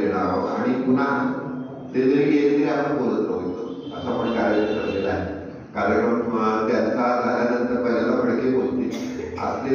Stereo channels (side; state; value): both; identical; correlation 1.00